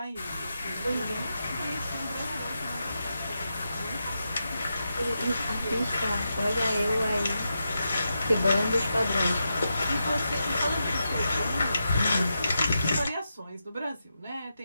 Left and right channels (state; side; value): inverted; both; correlation -0.87